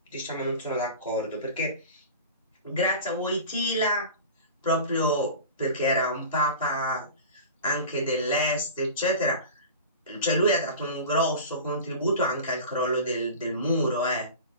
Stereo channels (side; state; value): both; inverted; correlation -0.34